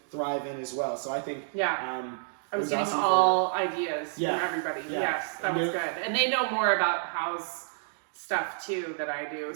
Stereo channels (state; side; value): silent; left; digital silence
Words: thrive in as well. So I think... I was getting all ideas from everybody. Yeah. Yes, that was good. And they know more about house stuff too that I do,